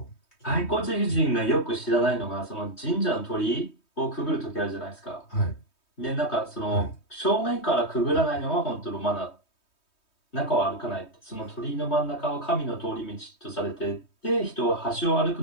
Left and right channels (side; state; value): right; late; 3.2 ms